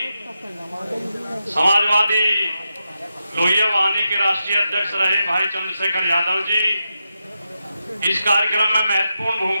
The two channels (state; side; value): inverted; both; correlation -0.88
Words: समाजवादी लोहिया वाहिनी के राष्ट्रीय अध्यक्ष रहे भाई चंद्रशेखर यादव जी, इस कार्यक्रम में महत्वपूर्ण